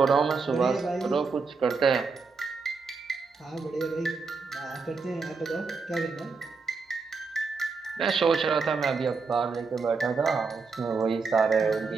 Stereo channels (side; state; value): left; quieter; 4.6 dB